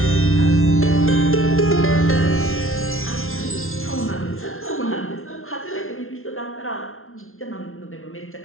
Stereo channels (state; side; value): late; right; 0.61 ms